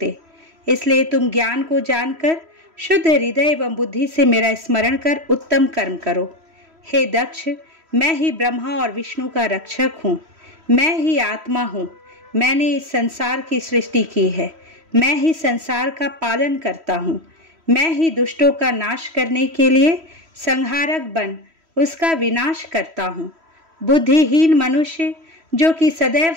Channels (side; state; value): left; late; 3.1 ms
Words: इसलिए तुम ज्ञान को जानकर शुद्ध हृदय एवं बुद्धि से मेरा स्मरण कर उत्तम कर्म करो। हे दक्ष, मैं ही ब्रह्मा और विष्णु का रक्षक हूँ। मैं ही आत्मा हूँ। मैंने इस संसार की सृष्टि की है। मैं ही संसार का पालन करता हूँ। मैं ही दुष्टों का नाश करने के लिए संहारक बन उसका विनाश करता हूँ। बुद्धिहीन मनुष्य जो कि सदैव